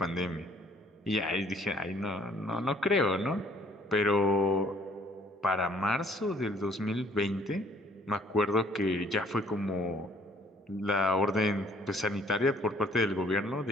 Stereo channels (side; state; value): both; normal; correlation 0.60